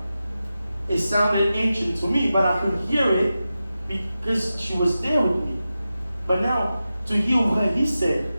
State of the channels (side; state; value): both; inverted; correlation -0.93